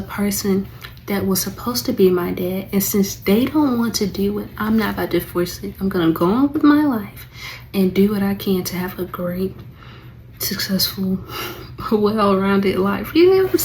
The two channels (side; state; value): both; identical; correlation 1.00